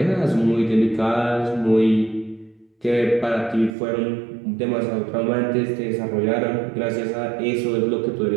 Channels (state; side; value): drops out; left; at 3.7 s